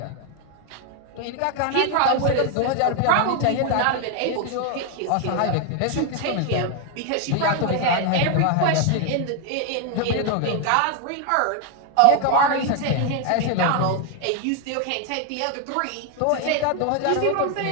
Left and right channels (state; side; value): different; both; correlation 0.01